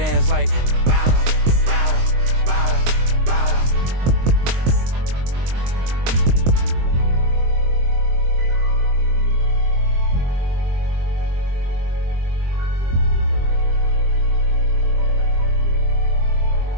like bow, bow, bow, bow.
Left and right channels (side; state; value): left; late; 23 ms